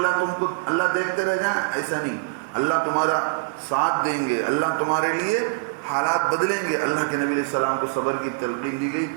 دیکھتے رہ جائیں. ایسا نہیں، اللہ تمہارا ساتھ دیں گے، اللہ تمہارے لیے حالات بدلیں گے. اللہ کے نبی علیہ السلام کو صبر کی تلقین دی گئی.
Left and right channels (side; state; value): left; quieter; 32.9 dB